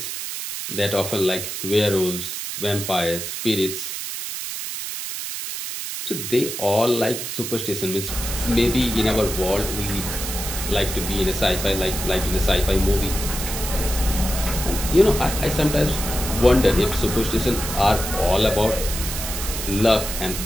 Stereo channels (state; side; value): noise; right; hiss, 6 dB below the sound